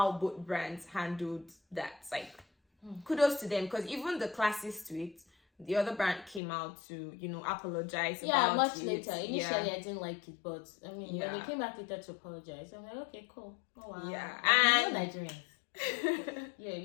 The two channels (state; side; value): drops out; right; at 6.4 s